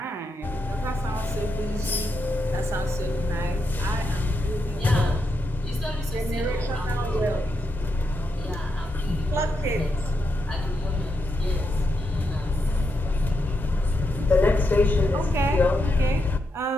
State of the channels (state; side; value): normal; both; correlation 0.83